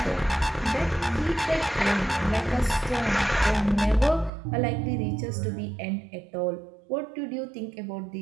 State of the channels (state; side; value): drops out; left; at 4.3 s